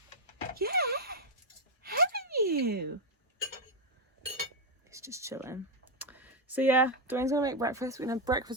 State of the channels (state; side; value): normal; both; correlation 0.03